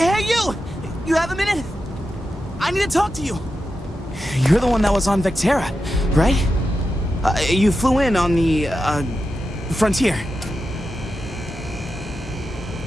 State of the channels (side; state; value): both; normal; correlation 0.89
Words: you! You have a minute? I need to talk to you. You're the one that was on Vectera, right? You flew in on the, Frontier.